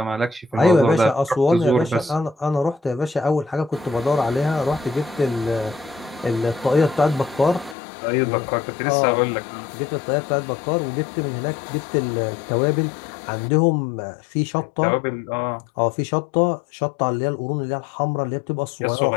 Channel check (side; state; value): right; drops out; at 7.8 s